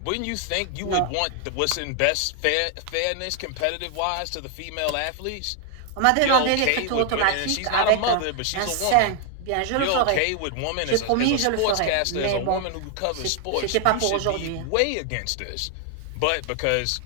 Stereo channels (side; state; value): both; different; correlation 0.00